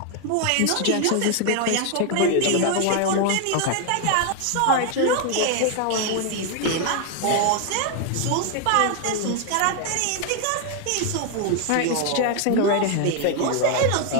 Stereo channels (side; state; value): both; different; correlation 0.00